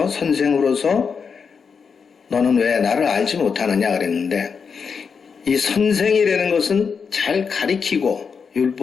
선생으로서 너는 왜 나를 알지 못하느냐 그랬는데 이 선생이라는 것은 잘 가리키고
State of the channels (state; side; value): quieter; right; 5.9 dB